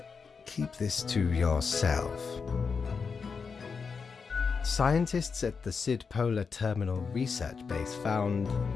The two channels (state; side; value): quieter; right; 5.4 dB